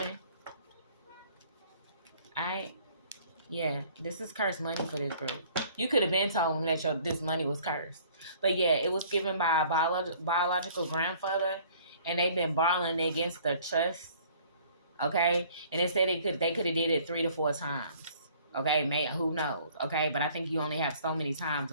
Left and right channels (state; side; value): inverted; both; correlation -0.55